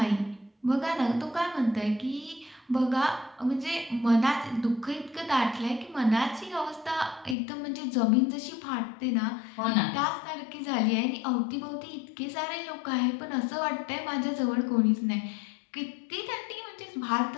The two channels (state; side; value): drops out; right; at 7.4 s